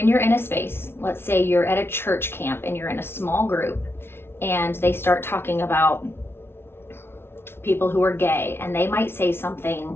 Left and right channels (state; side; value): late; right; 0.12 ms